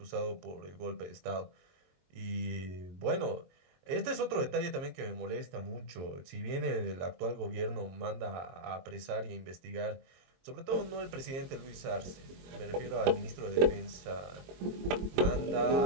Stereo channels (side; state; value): left; late; 22 ms